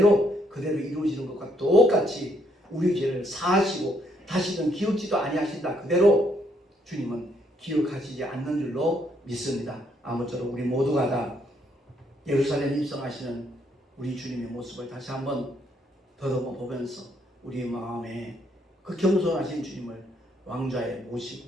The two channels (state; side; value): normal; both; correlation 0.72